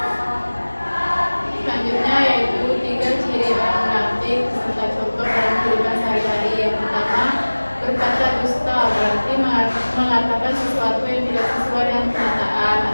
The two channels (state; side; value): inverted; both; correlation -1.00